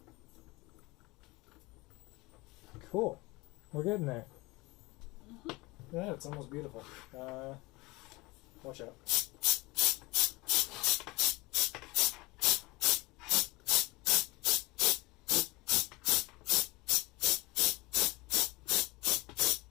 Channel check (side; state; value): right; quieter; 22.2 dB